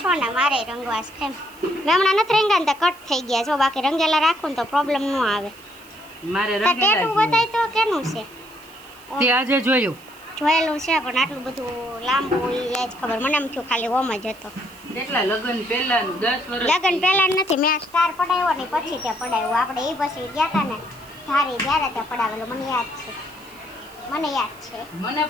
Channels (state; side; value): noise; right; hiss, 24 dB below the sound